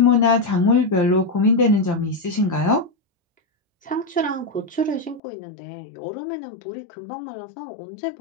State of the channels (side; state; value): right; drops out; at 5.2 s